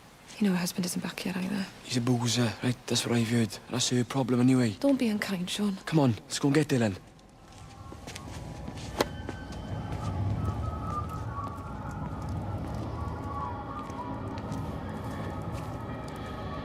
You know her husband isn't back yet either. He's a boozer, right? That's what I've heard. That's her problem anyway. Don't be unkind, Sean. Come on, let's go and get Dylan.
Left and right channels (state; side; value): identical; both; correlation 1.00